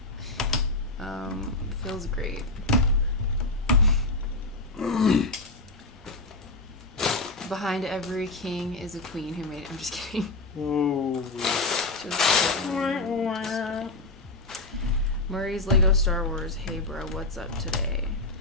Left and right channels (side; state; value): right; quieter; 3.0 dB